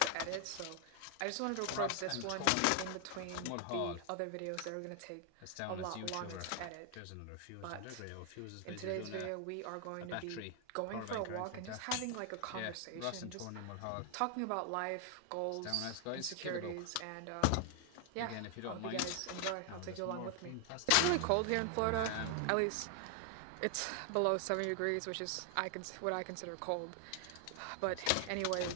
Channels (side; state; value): both; different; correlation 0.00